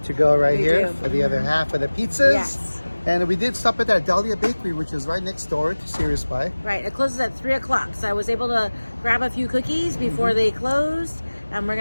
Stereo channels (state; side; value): inverted; both; correlation -1.00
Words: go right here do. for the other half of the pizzas. Yes. And we did stop at that Dalia Bakery, which is right next door to Serious Pie. Right, it closes at 3 o'clock, so I was able to grab a few cookies before they closed, and we're